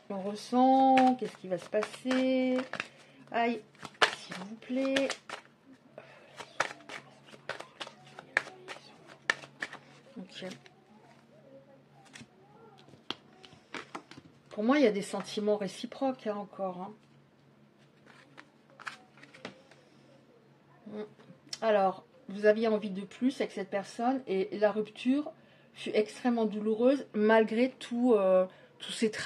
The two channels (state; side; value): identical; both; correlation 1.00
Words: ressent? Qu'est-ce qui va se passer? Aïe, s'il vous plaît. Ok. Pour moi, il y a des sentiments réciproques, hein, encore. Hein. Alors, vous aviez envie de plus avec cette personne et la rupture fut extrêmement douloureuse malgré tous ses